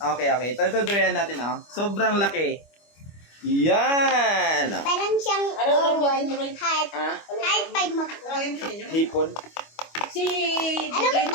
Okay. Ito durian natin, oh. Sobrang laki. Yan. Parang siyang heart. Ah? Heart Hipon. Si Ano ba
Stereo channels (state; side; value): late; right; 25 ms